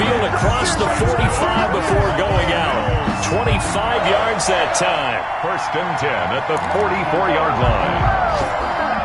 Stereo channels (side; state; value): both; identical; correlation 1.00